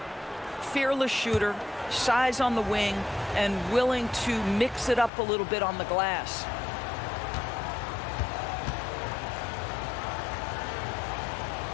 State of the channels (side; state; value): right; drops out; at 5.1 s